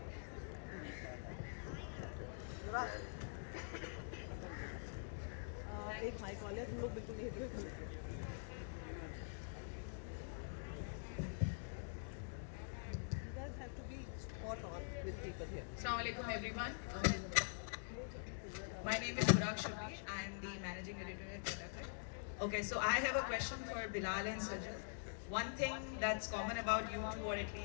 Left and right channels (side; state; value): right; silent; digital silence